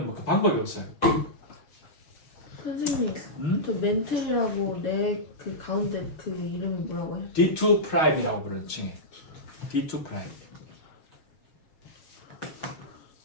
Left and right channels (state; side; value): late; right; 6.5 ms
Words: 뭐 방법이 없어요. 선생님, 저 멘틀이라고 내 그 가운데 그 이름이 뭐라고 해? D2 프라임이라고 부르는 칭해. D2 프라임.